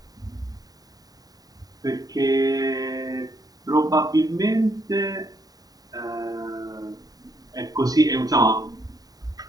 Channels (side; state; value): left; late; 0.18 ms